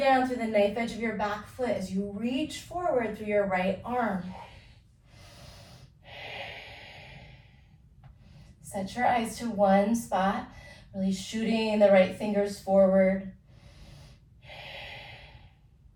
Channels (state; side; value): identical; both; correlation 1.00